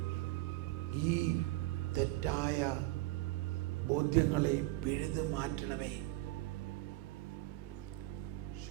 ഈ തെറ്റായ ബോധ്യങ്ങളെ പിഴുതു മാറ്റണമേ.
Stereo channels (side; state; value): left; quieter; 18.8 dB